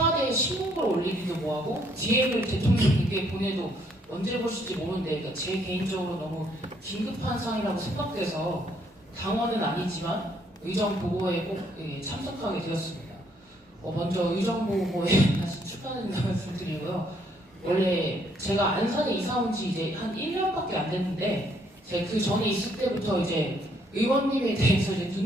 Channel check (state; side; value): normal; both; correlation 0.68